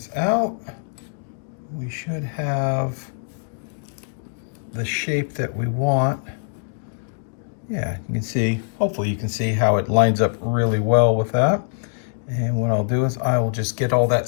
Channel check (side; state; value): right; silent; digital silence